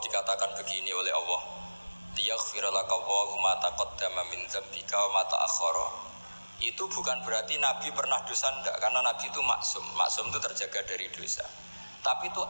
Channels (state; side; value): inverted; both; correlation -1.00